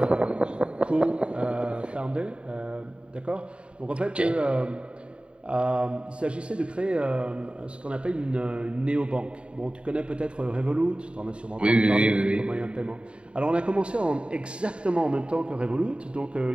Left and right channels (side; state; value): left; late; 0.055 ms